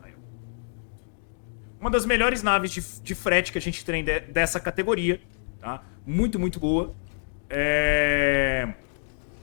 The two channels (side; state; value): right; silent; 60 dB below the other